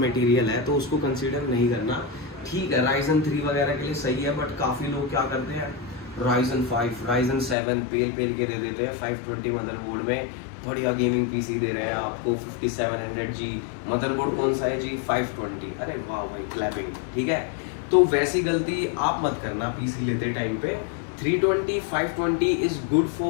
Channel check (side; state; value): right; drops out; at 7.6 s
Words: है, तो उसको कंसीडर नहीं करना। ठीक है, Ryzen 3 वगैरह के लिए सही है, बट काफ़ी लोग क्या करते हैं Ryzen 5, Ryzen 7 पेल के दे देते हैं 520 मदरबोर्ड में। बढ़िया गेमिंग PC दे रहे हैं आपको 5700G। मदरबोर्ड कौन सा है जी? 520। अरे वाह भाई, क्लैपिंग। ठीक है, तो वैसी गलती आप मत करना PC लेते टाइम पे। 320, 520 is good